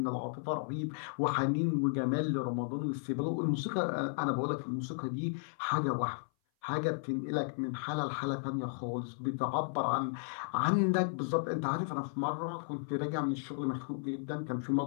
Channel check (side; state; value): right; silent; 55 dB below the other